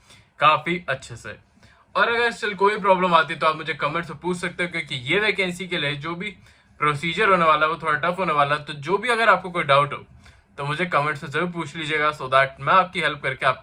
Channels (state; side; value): identical; both; correlation 1.00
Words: काफी अच्छे से। और अगर स्टिल कोई प्रॉब्लम आती है तो आप मुझे कमेंट से पूछ सकते हो, क्योंकि ये वैकेंसी के लिए जो भी प्रोसीजर होने वाला है वो थोड़ा टफ होने वाला है। तो जो भी अगर आपको कोई डाउट हो तो मुझे कमेंट से जरूर पूछ लीजिएगा, सो दैट मैं आपकी हेल्प करके